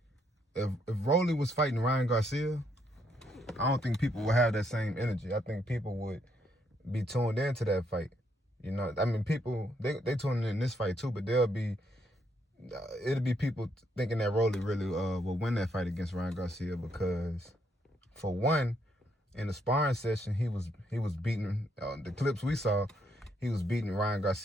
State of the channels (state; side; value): normal; both; correlation 0.74